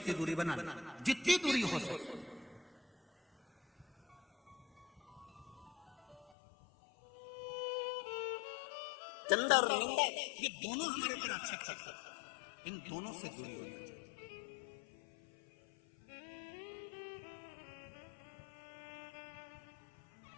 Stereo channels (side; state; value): right; drops out; at 6.2 s